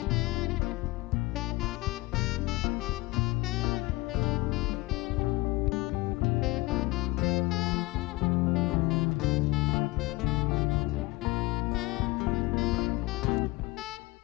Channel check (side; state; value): right; quieter; 22.3 dB